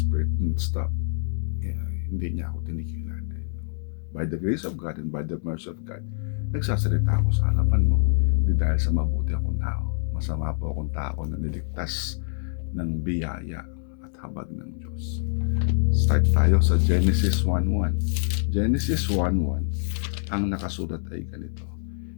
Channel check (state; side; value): silent; right; digital silence